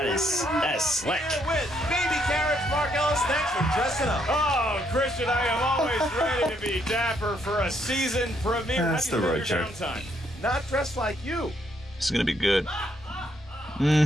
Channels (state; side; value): normal; both; correlation 0.72